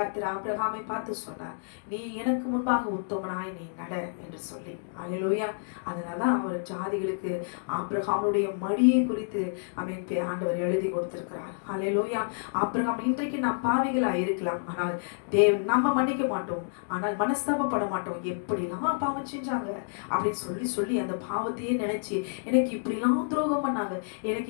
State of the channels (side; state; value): right; silent; digital silence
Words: ஆபிரகாமை பார்த்து சொன்னார், நீ எனக்கு முன்பாக உத்தமனாய் நீ நட என்று சொல்லி. அல்லேலூயா. அதனாலதான் அவர் ஜாதிகளுக்கு ஆபிரகாமுடைய மடியை குறித்து ஆண்டவர் எழுதி கொடுத்திருக்கிறார். அல்லேலூயா. ஆபிரகாம் இன்றைக்கு நாம் பாவிகளா இருக்கலாம், ஆனால் தேவன் நம்ம மன்னிக்க மாட்டோம், ஆனால் மனஸ்தாபப்பட மாட்டோம். எப்படிலாம் பாவம் செஞ்சாங்க அப்படின்னு சொல்லி சொல்லி அந்த பாவத்தையே நினைச்சு எனக்கு இப்படிலாம் துரோகம் பண்ணாங்க,